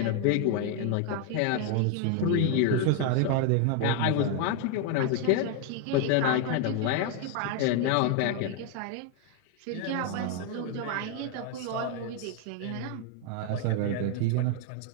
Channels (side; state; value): both; different; correlation 0.01